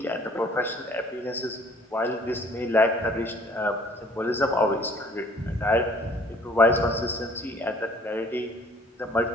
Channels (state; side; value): normal; both; correlation 0.56